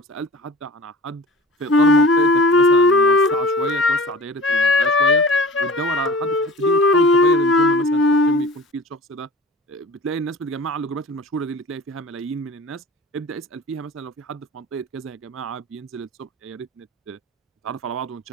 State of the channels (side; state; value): both; normal; correlation 0.40